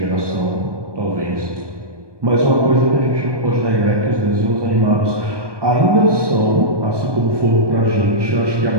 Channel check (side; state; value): left; late; 1.2 ms